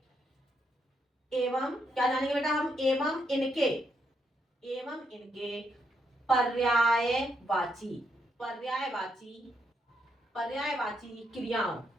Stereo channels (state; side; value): normal; both; correlation 0.78